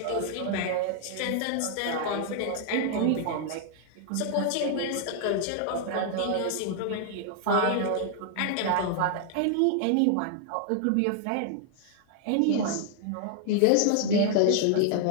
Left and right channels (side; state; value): both; different; correlation 0.00